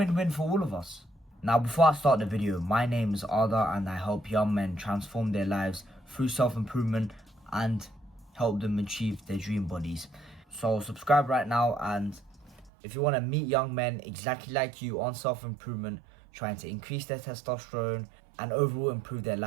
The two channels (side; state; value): left; drops out; at 12.7 s